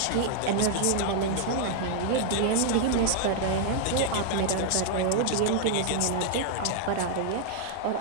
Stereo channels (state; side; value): different; both; correlation 0.00